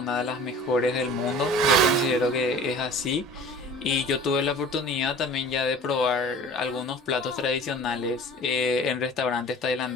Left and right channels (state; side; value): normal; both; correlation 0.42